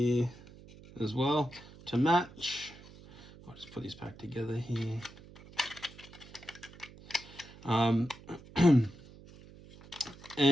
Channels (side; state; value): right; noise; hum, 20 dB below the sound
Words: as well to match. I'll just put these back together here.